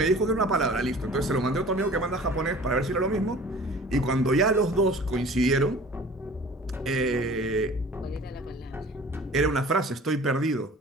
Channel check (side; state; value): both; normal; correlation 0.45